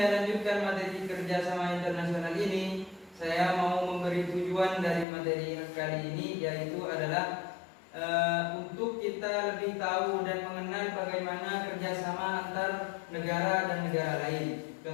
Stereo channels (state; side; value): drops out; right; at 5.1 s